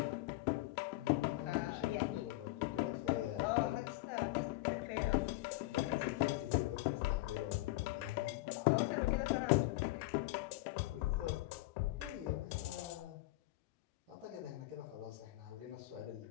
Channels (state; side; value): quieter; right; 19.1 dB